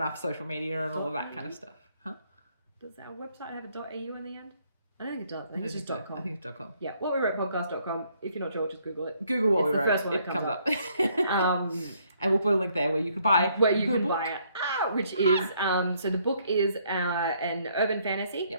social media and all of that kind of stuff. Huh? Does our website have a .au in the end? I don't think it does. I think it's just I .com. think it's .com. Yeah, whatwewerepodcast.com. If you're not sure, just Google it. Google what It's we the wrote. first one it that comes comes up. Um, and we'll put a link there where you can buy where you the can book. buy it. Which is, so the book is an urban fantasy.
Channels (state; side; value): inverted; both; correlation -0.68